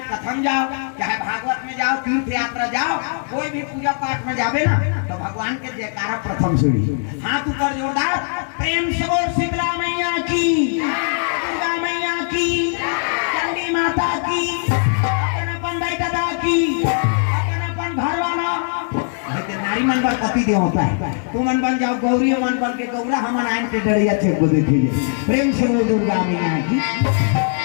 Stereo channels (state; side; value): silent; right; 61 dB below the other